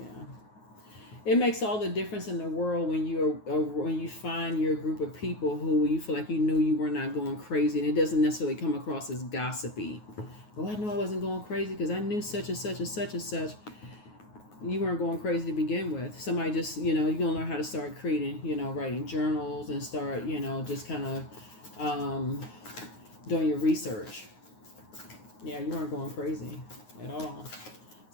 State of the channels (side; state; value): right; late; 9.4 ms